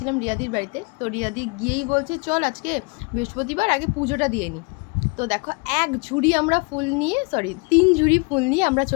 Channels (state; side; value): quieter; right; 31.8 dB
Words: রিয়াদির বাড়িতে। তো রিয়াদি গিয়েই বলছে চল আজকে বৃহস্পতিবার, আগে পুজোটা দিয়ে নিই। তো দেখো, এক ঝুড়ি আমরা ফুল নিয়ে, সরি 3 ঝুড়ি ফুল নিয়ে আমরা